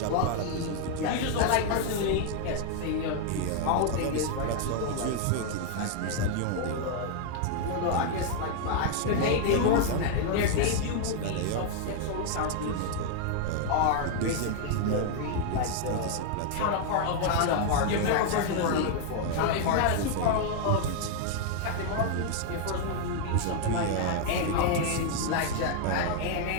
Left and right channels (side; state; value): both; different; correlation 0.00